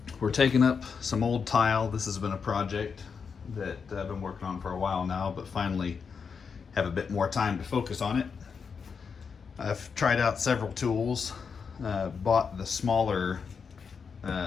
We're taking up some old tile. This has been a project that I've been working on for a while now, but finally have a bit more time to focus on it. I've tried out several tools, bought the smaller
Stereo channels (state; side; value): quieter; right; 5.9 dB